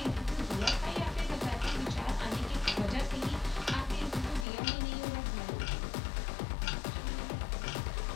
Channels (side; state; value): right; drops out; at 4.5 s